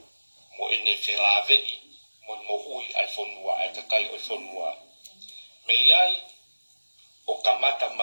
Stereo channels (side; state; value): both; inverted; correlation -1.00